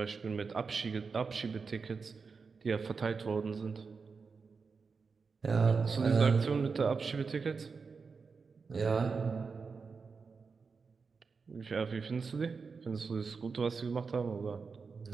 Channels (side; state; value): left; quieter; 5.0 dB